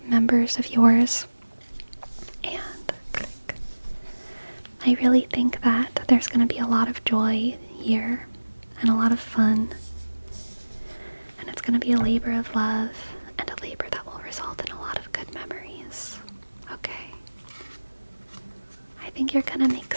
members of yours. And I really think that there's going to be a lot of joy here and a lot of fun. And it's going to be a labor of love and a labor that will result in a lot of good memories. Okay. I think you're going to make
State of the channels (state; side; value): inverted; both; correlation -1.00